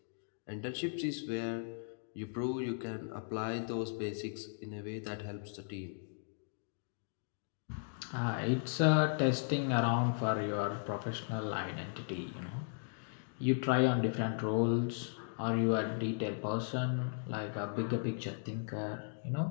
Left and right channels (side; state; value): right; silent; digital silence